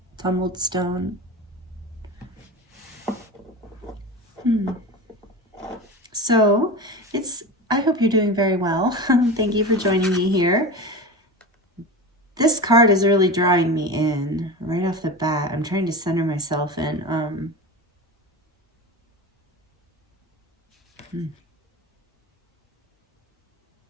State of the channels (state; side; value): normal; both; correlation 0.27